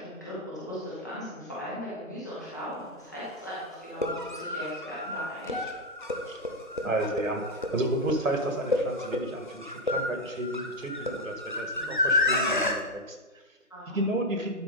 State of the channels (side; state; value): both; normal; correlation 0.08